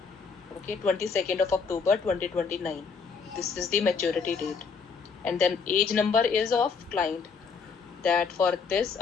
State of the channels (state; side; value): quieter; right; 5.4 dB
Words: Okay, 22nd of October 2029. This is the maturity date. And then age number is of client. That for this